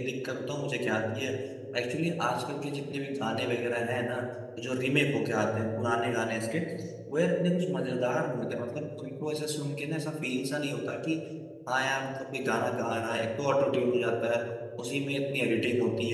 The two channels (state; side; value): identical; both; correlation 1.00